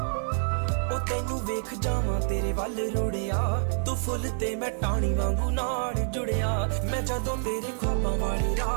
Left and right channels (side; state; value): left; silent; 60 dB below the other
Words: ओ तैनू वेख जावां तेरे वल रुड़िया, तू फुल ते मैं टाणी वांगू नाल जुड़िया। मैं जदों तेरे ख्वाबां वाली